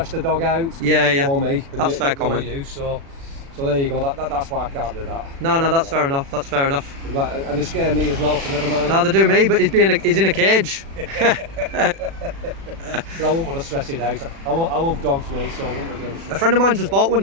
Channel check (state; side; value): late; left; 36 ms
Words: the dog out. Yeah. You know me. and That's you- fair you know comment. You, so there you go. That's why I can't do that. No, that's fair enough. That's fair enough. And they scare me as well, so never mind. No, they do me, but he's in a cage. But I wouldn't want to stress it out. I love dogs, me, so I wouldn't want to A stress. friend of mine just bought one.